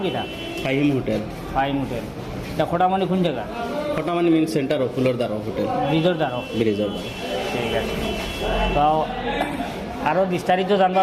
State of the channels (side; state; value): both; identical; correlation 1.00